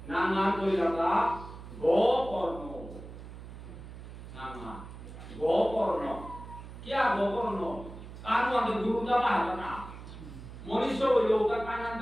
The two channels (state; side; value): noise; right; hum, 13 dB below the sound